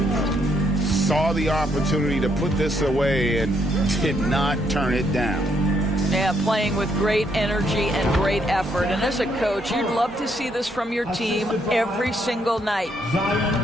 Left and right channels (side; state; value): both; normal; correlation 0.73